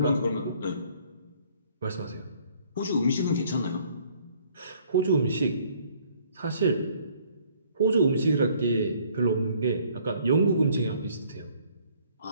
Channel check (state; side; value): inverted; both; correlation -0.60